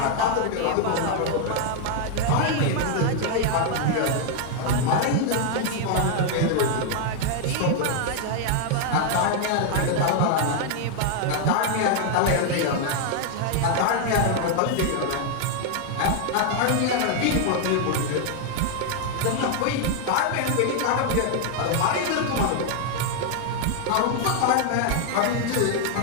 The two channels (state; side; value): different; both; correlation 0.00